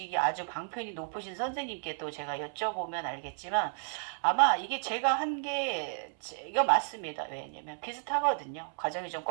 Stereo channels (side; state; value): left; silent; 56 dB below the other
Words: 아주 방편이 높으신 선생님께 또 제가 여쭤보면 알겠지만 아마 이게 제가 한 게 이거 맞습니다. 왜냐면 비슷하거든요. 과정이 좀